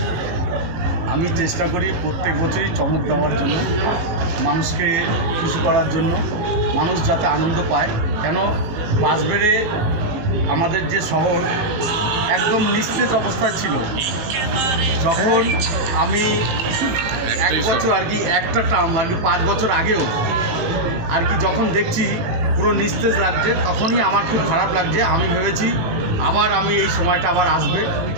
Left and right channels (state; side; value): late; left; 19 ms